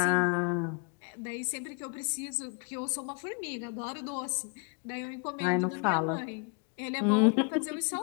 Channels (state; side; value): quieter; right; 36.6 dB